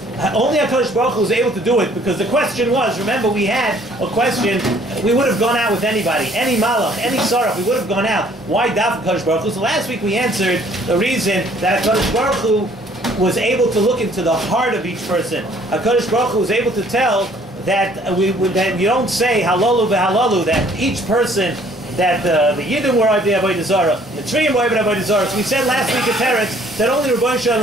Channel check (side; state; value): both; normal; correlation 0.59